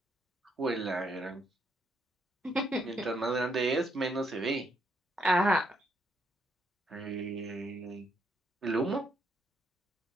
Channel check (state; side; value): normal; both; correlation 0.74